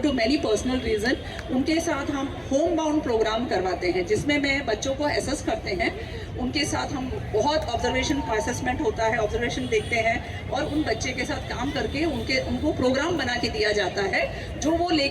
many personal reason, उनके साथ हम होम बाउंड प्रोग्राम करवाते हैं, जिसमें मैं बच्चों को असेस करते हैं. उनके साथ हम बहुत ऑब्जर्वेशन असेसमेंट होता है, ऑब्जर्वेशन देखते हैं, और उन बच्चे के साथ काम करके उनको प्रोग्राम बना के दिया जाता है, जो वो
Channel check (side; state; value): both; identical; correlation 1.00